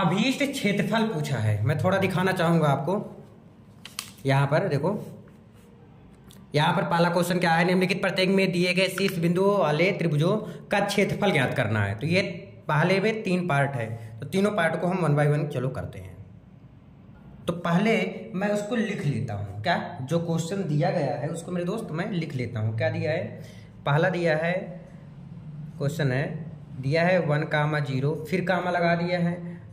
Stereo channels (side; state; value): both; identical; correlation 1.00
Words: क्षेत्रफल पूछा है। मैं थोड़ा दिखाना चाहूंगा आपको। यहाँ पर देखो, यहाँ पर पहला क्वेश्चन क्या है, निम्नलिखित प्रत्येक में दिए गए शीर्ष बिंदुओं वाले त्रिभुजों का क्षेत्रफल ज्ञात करना है। तो ये पहले में 3 पार्ट है, तो तीनों पार्ट को हम 1 बाय 1 चलो करते हैं। तो पहले मैं उसको लिख लेता हूँ, क्या जो क्वेश्चन दिया गया है उसको मेरे दोस्त मैं लिख लेता हूँ। क्या दिया है, पहला दिया है क्वेश्चन है, दिया है 1,0, फिर कामा लगा दिया है,